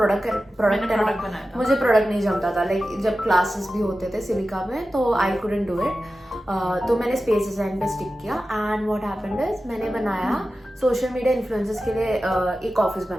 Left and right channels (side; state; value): both; normal; correlation 0.94